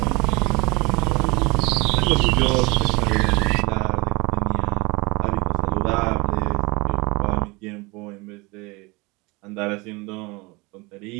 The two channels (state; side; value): quieter; left; 25.6 dB